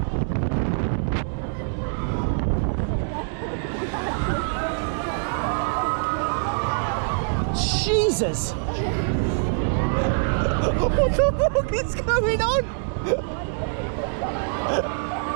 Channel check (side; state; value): left; silent; 62 dB below the other